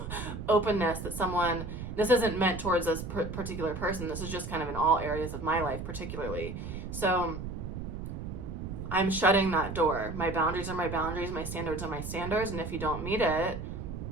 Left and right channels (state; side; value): noise; right; rumble, 7 dB below the sound